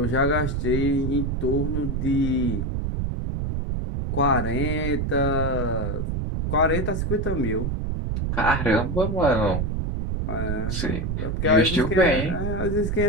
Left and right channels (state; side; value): noise; right; rumble, 1 dB below the sound